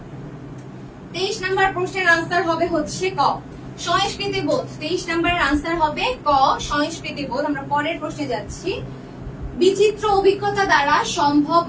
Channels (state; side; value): identical; both; correlation 1.00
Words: 23 নাম্বার প্রশ্নের আনসার হবে হচ্ছে ক, সংস্কৃতি বোধ। 23 নাম্বারের আনসার হবে ক, সংস্কৃতি বোধ। আমরা পরের প্রশ্নে যাচ্ছি। বিচিত্র অভিজ্ঞতা দ্বারা সম্ভব